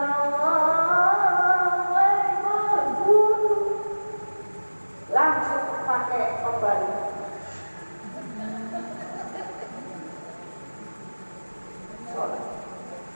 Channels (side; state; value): both; inverted; correlation -1.00